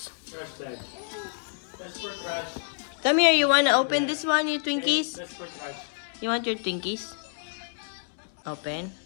Trash bag. That's for trash. Come here. You want to open this one, your Twinkies? That's for trash. You want your Twinkies? Open.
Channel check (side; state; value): right; silent; 59 dB below the other